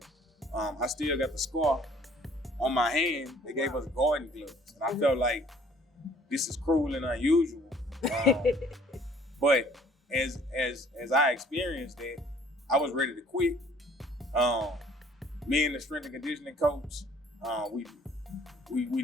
I still got the scar on my hand, they gave us garden gloves. And I felt like this is cruel and unusual. But as I experienced that, I was ready to quit. Me and the strength and conditioning coach, we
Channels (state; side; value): normal; both; correlation 0.56